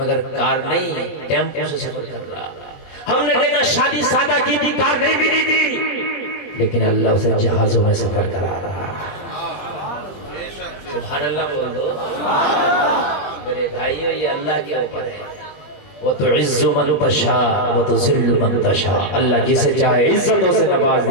कार नहीं, टेम्पो से सफर कर रहा। हमने देखा शादी सादा की थी, कार नहीं मिली थी, लेकिन अल्लाह उसे जहाजों में सफर करा रहा। सुभान अल्लाह बोल दो मेरे भाइयों, ये अल्लाह के ऊपर है। वो तो इज्जु मन तशा वो तो जिल्लु मन तशा। अल्लाह जिसे चाहे इज्जतों से नवाज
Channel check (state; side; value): late; right; 20 ms